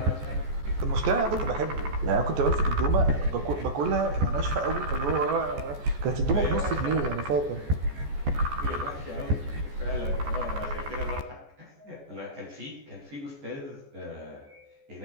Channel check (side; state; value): left; late; 14 ms